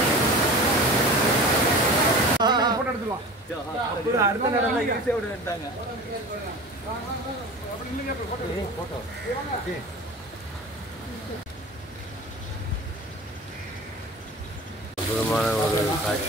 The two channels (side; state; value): both; normal; correlation 0.36